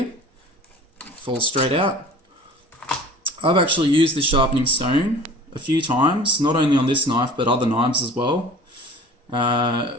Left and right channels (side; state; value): both; normal; correlation 0.44